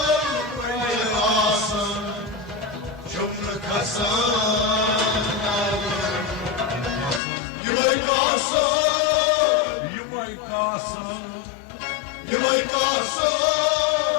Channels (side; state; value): right; drops out; at 7.2 s